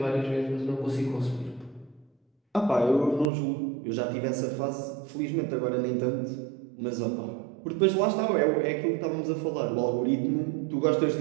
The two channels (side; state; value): left; drops out; at 3.3 s